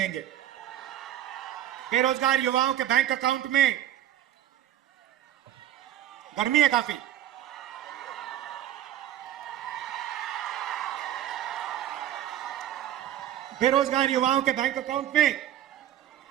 बेरोजगार युवाओं के बैंक अकाउंट में, गर्मी है काफी, बेरोजगार युवाओं के बैंक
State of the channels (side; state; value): left; quieter; 11.9 dB